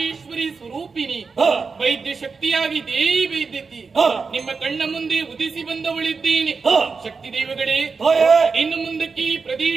ಸ್ವರೂಪಿಣಿ, ವೈದ್ಯ ಶಕ್ತಿಯಾಗಿ ದೇವಿ ವೈದ್ಯತಿ ನಿಮ್ಮ ಕಣ್ಣ ಮುಂದೆ ಉದಿಸಿ ಬಂದವಳಿದ್ದೇನೆ. ಶಕ್ತಿ ದೈವಗಳೇ, ಇನ್ನು ಮುಂದಕ್ಕೆ ಈ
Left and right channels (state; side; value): quieter; left; 4.8 dB